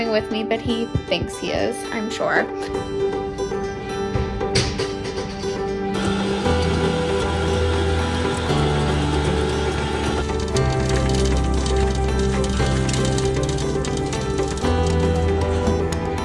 with me, but he thinks he is, I'm sure.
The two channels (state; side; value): identical; both; correlation 1.00